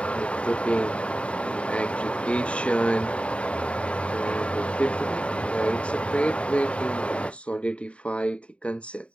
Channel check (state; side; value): late; right; 0.060 ms